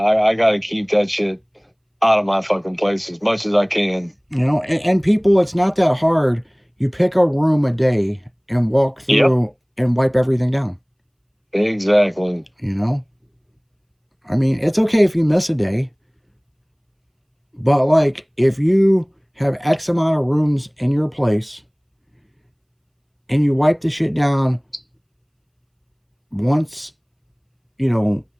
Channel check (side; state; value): both; identical; correlation 1.00